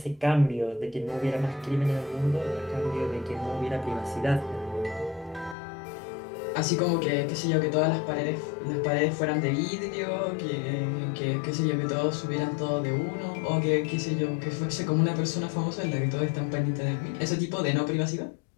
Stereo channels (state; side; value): drops out; right; at 5.6 s